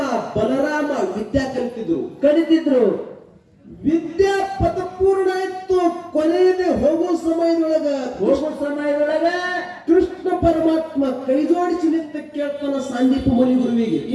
ಬಲರಾಮ ವಿದ್ಯಾ ಕಲಿತಿದ್ರು. ವಿದ್ಯಾ ಪದಪೂರ್ಣ ಆಯ್ತು. ಕೊನೆಯದೇ ಹೋಗೋ ಸಮಯದೊಳಗ ಕೃಷ್ಣ ಪರಮಾತ್ಮ ಕೈ ಜೋಡಿಸಿ ನಿಂತ ಕೇಳ್ತಾನ ಸಾಂದೀಪ ಮುನಿ ಗುರುವಿಗೆ,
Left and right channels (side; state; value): both; identical; correlation 1.00